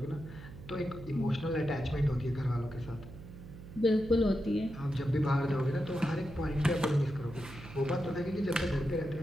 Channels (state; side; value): noise; right; hum, 15 dB below the sound